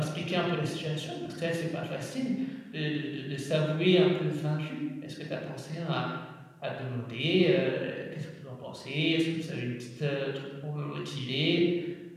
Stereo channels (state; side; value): identical; both; correlation 1.00